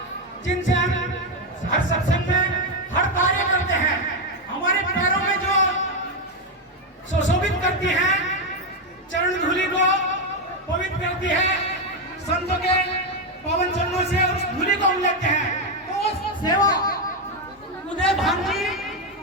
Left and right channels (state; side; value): normal; both; correlation 0.06